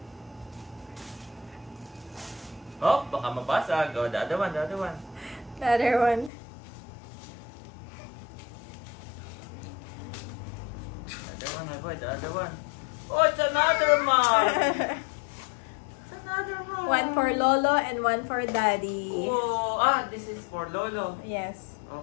Oh, baka mabasag. Oh, the other one, the other one. The other one. The other one, my boy, the other one. Oh, it's another mug! It's another mug! One for Lolo and one for Daddy. Oh, this is for Lolo. Yes.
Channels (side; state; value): right; drops out; at 6.3 s